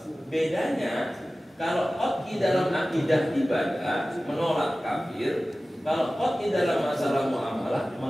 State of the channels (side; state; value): both; normal; correlation 0.96